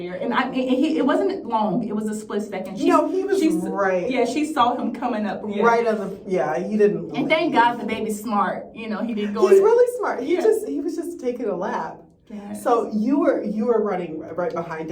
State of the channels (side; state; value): both; identical; correlation 1.00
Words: and it wasn't long. It was a split second. He was right. Yeah, she saw him coming up. Yeah. Right on the. Yeah, he didn't. And thank God the baby's smart. You know, he didn't go. He's really smart. He was just taking a lap. Yes. So you were running right behind